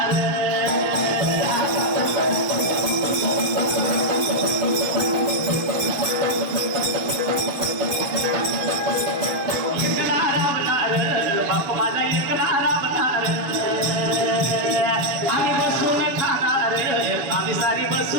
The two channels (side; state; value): left; late; 7.2 ms